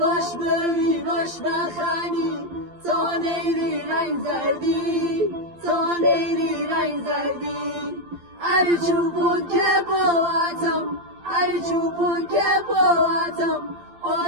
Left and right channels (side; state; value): left; late; 12 ms